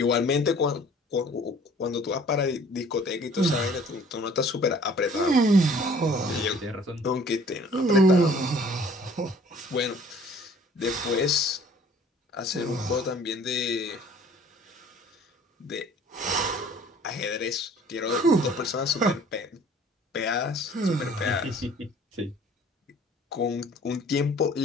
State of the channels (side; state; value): both; normal; correlation 0.52